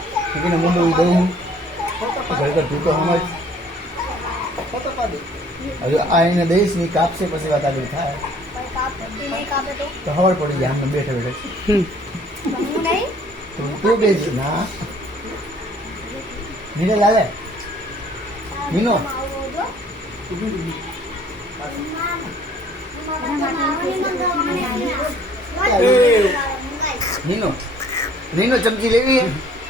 એને મોઢું દઉં ખરેખર તું તો સમજ. હવે આ એને દઈશ ની કાપશે પછી વાત આગળ થાય તો ખબર પડી જાય. આમને બેઠે બેઠે તું બેસ ના નીને લાલે નીનો નીનો નીનો ચમચી લેવી.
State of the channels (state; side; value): normal; both; correlation 0.57